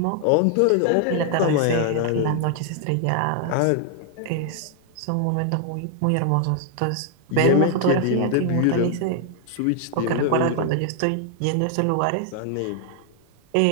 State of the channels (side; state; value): both; different; correlation 0.00